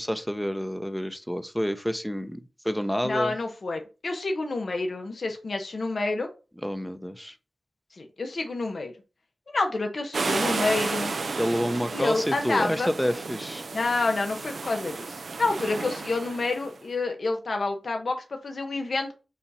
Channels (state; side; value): normal; both; correlation 0.94